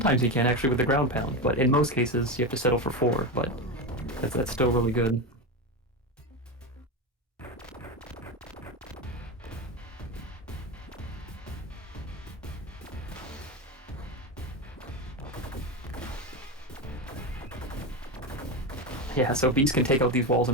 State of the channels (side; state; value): both; normal; correlation 0.17